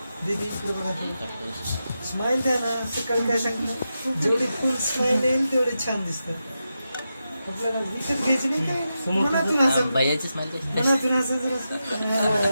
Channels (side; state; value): both; inverted; correlation -0.89